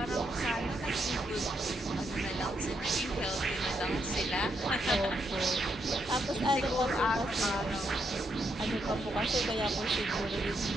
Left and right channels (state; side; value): normal; both; correlation 0.79